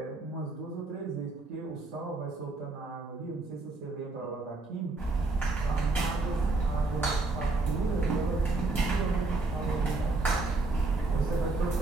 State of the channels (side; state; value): left; quieter; 3.4 dB